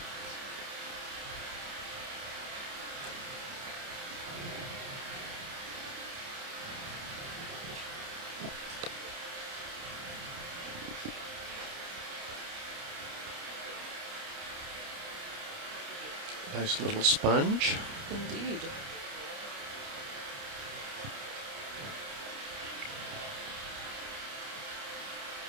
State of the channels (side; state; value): left; late; 29 ms